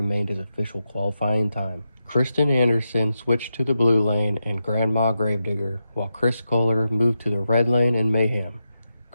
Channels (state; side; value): inverted; both; correlation -0.87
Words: his official qualifying time. Kristen Anderson switched to the blue lane in Grandma Gravedigger, while Chris Kohler moved to the red lane in Mayhem.